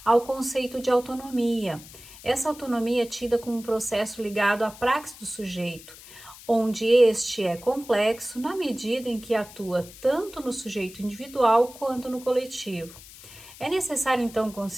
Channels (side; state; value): left; noise; hiss, 18 dB below the sound